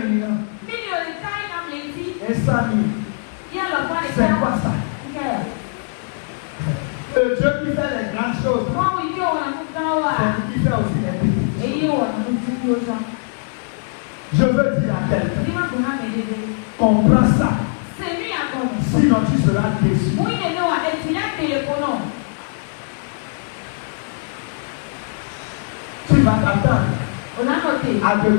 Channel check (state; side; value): silent; right; digital silence